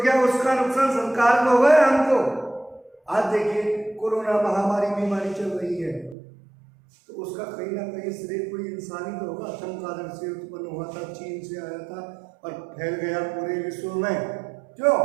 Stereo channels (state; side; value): drops out; left; at 6.2 s